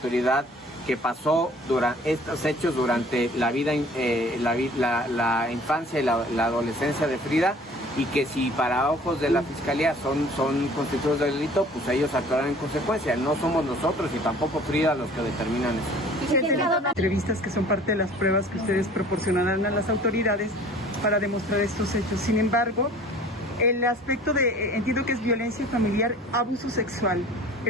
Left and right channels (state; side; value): normal; both; correlation 0.49